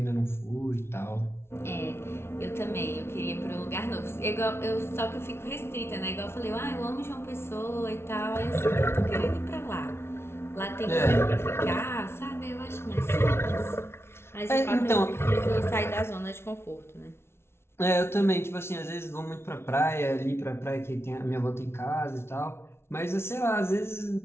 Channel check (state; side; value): late; right; 0.12 ms